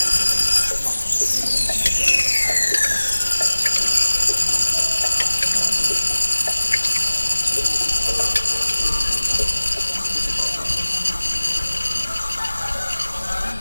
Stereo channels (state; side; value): inverted; both; correlation -1.00